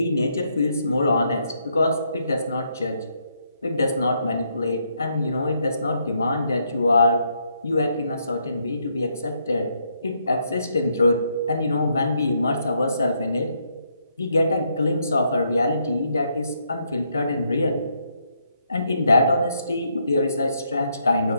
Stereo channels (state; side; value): inverted; both; correlation -0.75